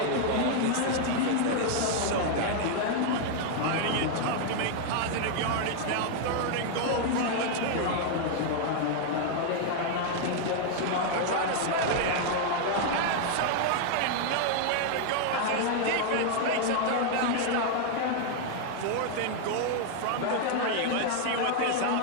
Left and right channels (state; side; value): different; both; correlation 0.00